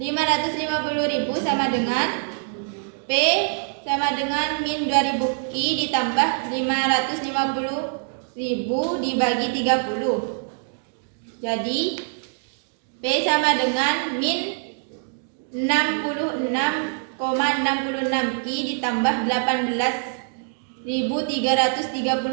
sama dengan P sama dengan min 2000 Q ditambah 550.000 dibagi 30. Jadi P sama dengan min 66,66 Q ditambah 18.333.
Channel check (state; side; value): silent; left; 60 dB below the other